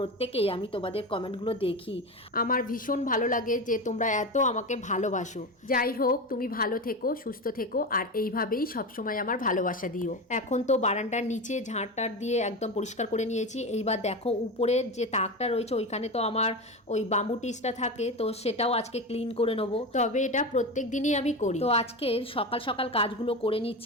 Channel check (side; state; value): both; normal; correlation 0.22